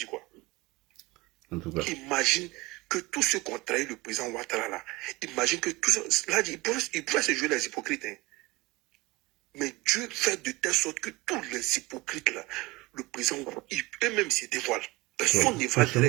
quoi? En tout cas. Imagine que tous ceux qui ont trahi le président Ouattara là, imagine que tous ceux, là, ils pourraient se jouer les hypocrites. Hein. Mais Dieu fait de telle sorte que tous les hypocrites là, le président, eux-mêmes se dévoilent. Personne ne va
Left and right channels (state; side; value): quieter; left; 21.5 dB